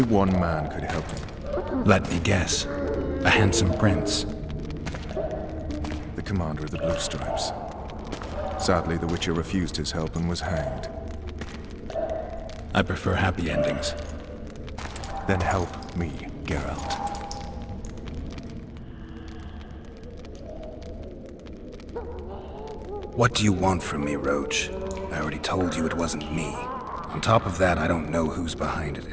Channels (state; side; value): identical; both; correlation 1.00